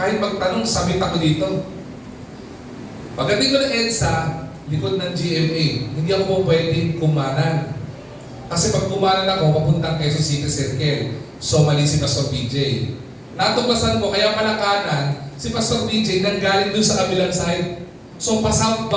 magtanong, sabit ako dito. Pagdating ko ng EDSA, likod ng GMA, hindi ako po pwedeng kumanan. Kasi pag kumanan ako, papuntang Quezon City Circle. So mali si Pastor BJ. Natuklasan ko, kaya pala kanan, si Pastor BJ nanggaling doon sa kabilang side. So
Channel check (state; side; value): identical; both; correlation 1.00